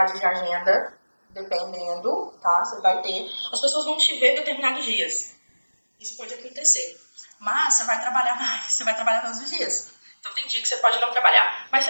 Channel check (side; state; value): both; inverted; correlation -1.00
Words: de agenda, dependendo, tá? Você vai ter. As pessoas vão te ver determinados dias. Isso pode acontecer. Mas você vai trabalhar mais, você vai trabalhar todos os dias. Então tem dia que você pode não trabalhar, mas